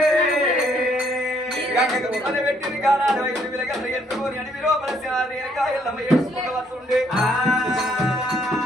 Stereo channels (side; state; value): both; normal; correlation 0.68